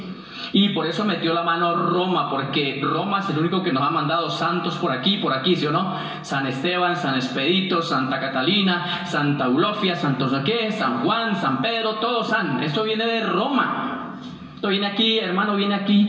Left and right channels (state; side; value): identical; both; correlation 1.00